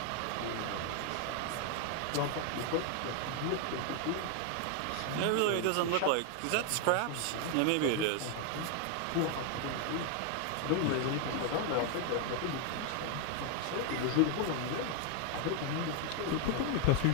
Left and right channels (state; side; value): different; both; correlation 0.00